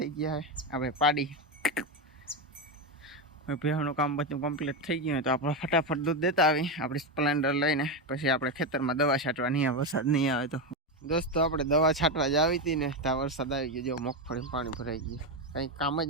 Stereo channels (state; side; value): normal; both; correlation 0.11